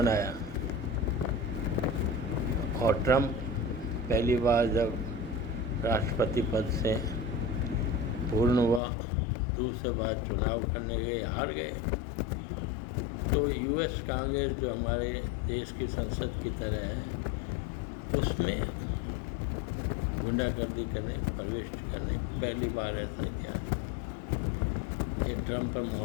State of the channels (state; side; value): drops out; right; at 8.8 s